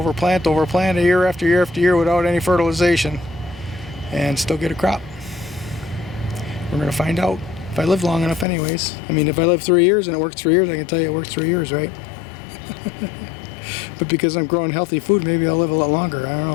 plant over plant year after year after year without any fertilization and still get a crop. We're going to find out if I live long enough anyways. I mean, if I live 3 years and it works 3 years, I can tell you it worked 3 years, right? But because I'm growing healthy food, maybe I'll live a lot longer. I don't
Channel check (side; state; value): right; drops out; at 8.5 s